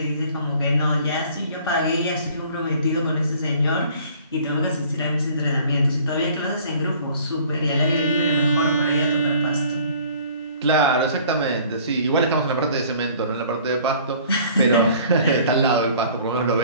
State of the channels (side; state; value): both; inverted; correlation -0.52